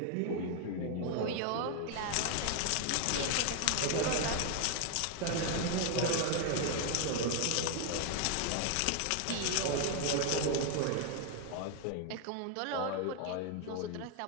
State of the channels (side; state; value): both; different; correlation 0.01